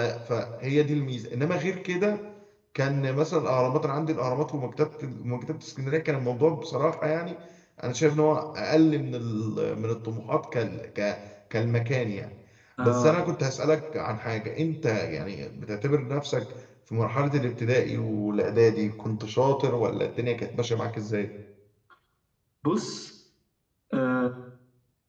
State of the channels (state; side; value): identical; both; correlation 1.00